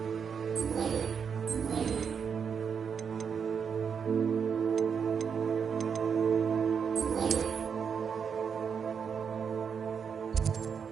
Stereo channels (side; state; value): left; quieter; 6.7 dB